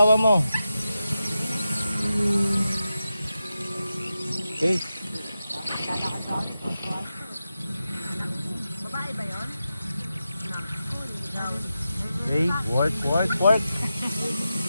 mo. Okay. Babae ba yun? Okay, work.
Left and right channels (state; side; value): inverted; both; correlation -0.90